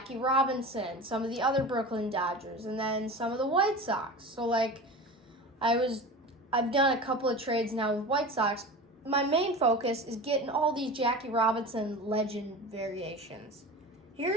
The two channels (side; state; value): both; normal; correlation 0.32